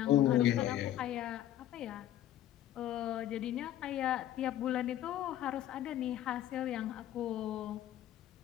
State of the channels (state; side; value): quieter; right; 12.4 dB